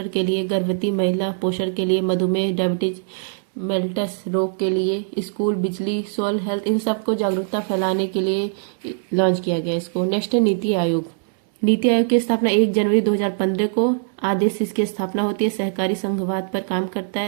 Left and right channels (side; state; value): left; silent; digital silence